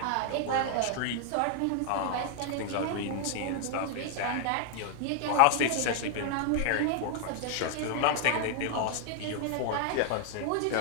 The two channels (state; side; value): different; both; correlation 0.00